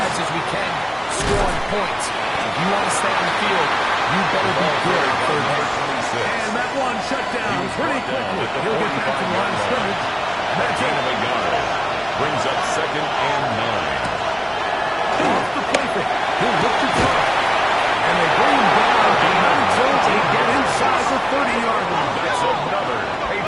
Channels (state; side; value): identical; both; correlation 1.00